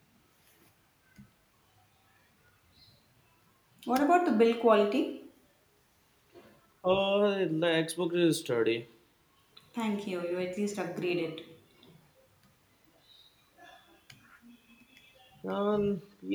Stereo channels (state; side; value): identical; both; correlation 1.00